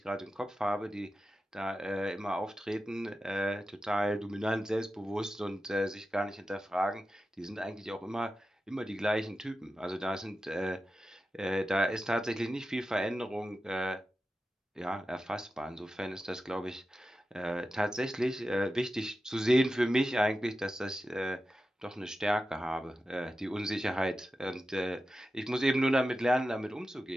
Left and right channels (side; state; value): both; normal; correlation 0.92